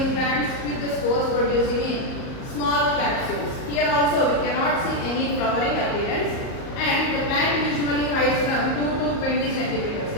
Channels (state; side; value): late; right; 38 ms